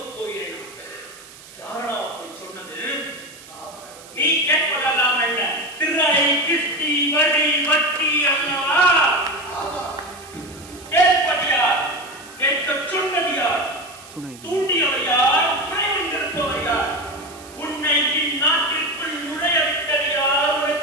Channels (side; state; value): right; noise; hiss, 20 dB below the sound